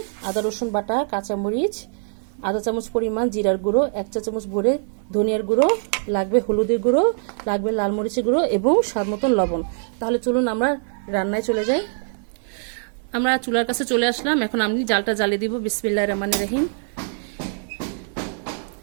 আদা রসুন বাটা, কাঁচামরিচ, আধা চামচ পরিমাণ জিরার গুঁড়ো, 1 চা চামচ ভরে ধনিয়ার গুঁড়ো, লাগবে হলুদের গুঁড়ো, লাগবে লাল মরিচের গুঁড়ো এবং স্বাদ মতন লবণ। তাহলে চলুন আমরা রান্নায় চলে যাই। আমরা চুলার কাছে চলে আসলাম। এখন আমি জালটা জ্বালিয়ে দিব। বিসমিল্লাহির রহমানির রহিম।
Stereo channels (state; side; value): silent; left; 63 dB below the other